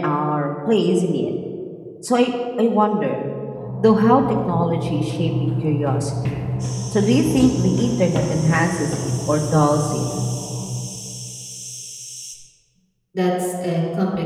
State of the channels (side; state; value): both; identical; correlation 1.00